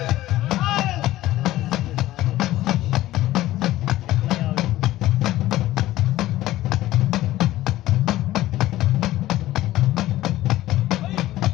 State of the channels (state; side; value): quieter; right; 15.5 dB